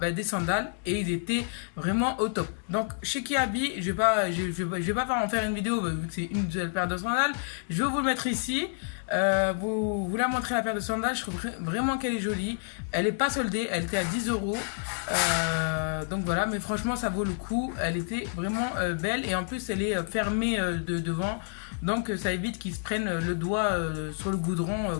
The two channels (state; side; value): silent; right; digital silence